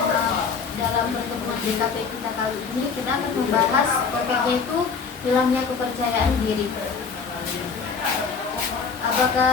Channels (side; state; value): right; quieter; 5.4 dB